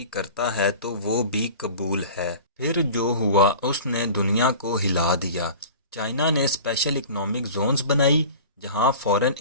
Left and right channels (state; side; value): inverted; both; correlation -0.39